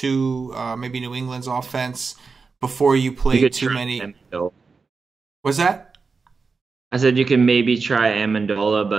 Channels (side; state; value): left; quieter; 4.7 dB